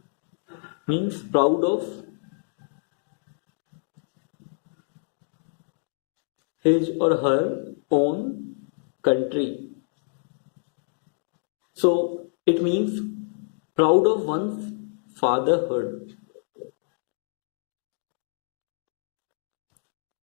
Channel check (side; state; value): right; silent; digital silence